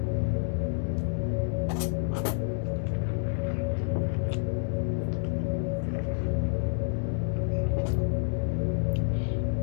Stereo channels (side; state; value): right; silent; 56 dB below the other